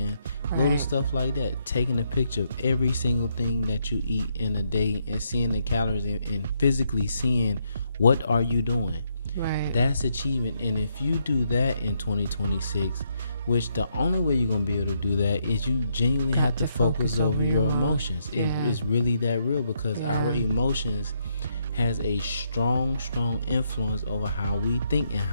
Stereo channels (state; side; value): inverted; both; correlation -0.76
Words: Little stuff like that. Taking a picture of every single thing that you eat in a day and seeing the calories and physically seeing what are you doing. That's achievement. And if you do that in 2026, which the only way you're going to be able to do that is you genuinely have to focus over your emotions. It is really that real, because our emotions has a strong influence over how we think and